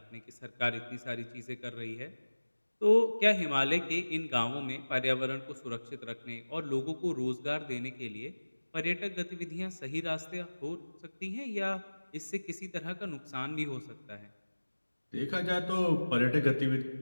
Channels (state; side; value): inverted; both; correlation -1.00